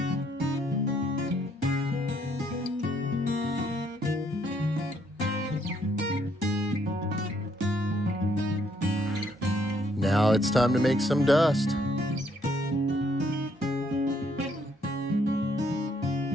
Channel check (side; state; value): both; normal; correlation 0.70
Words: Now it's time to make some dust.